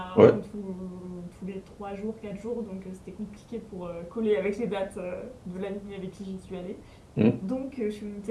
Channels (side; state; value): both; identical; correlation 1.00